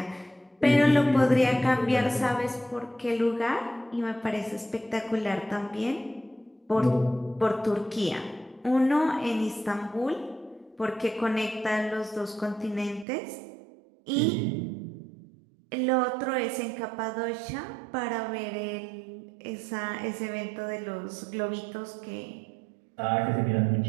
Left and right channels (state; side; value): drops out; left; at 13.1 s